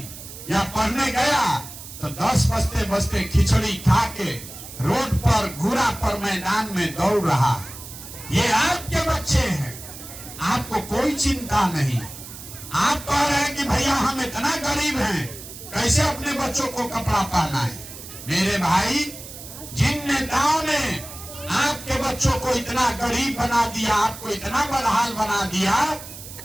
या पढ़ने गया तो 10 बजते बजते खिचड़ी खा के रोड पर घूरा पर मैदान में दौड़ रहा है। ये आपके बच्चे हैं, आपको कोई चिंता नहीं। आप कह रहे हैं कि भैया हम इतना गरीब हैं, कैसे अपने बच्चों को कपड़ा पहना है? मेरे भाई, जिन नेताओं ने आपके बच्चों को इतना गरीब बना दिया, आपको इतना बदहाल बना दिया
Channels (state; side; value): noise; right; hiss, 13 dB below the sound